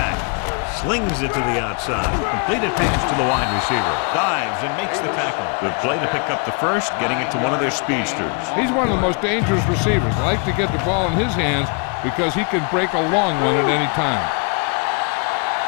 Slings it to the outside. Completed pass to the wide receiver. Dives and makes the tackle. Good play to pick up the first, getting it to one of their speedsters. He's one of the most dangerous receivers. I like to get the ball in his hands because he can break a long one at any time.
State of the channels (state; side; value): quieter; right; 36.7 dB